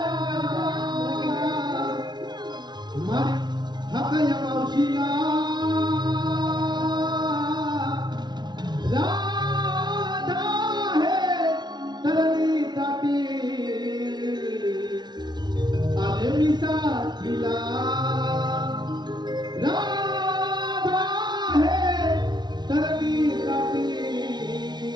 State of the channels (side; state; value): left; late; 0.20 ms